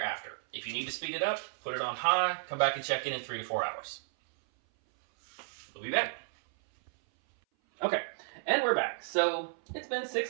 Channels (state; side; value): silent; left; 56 dB below the other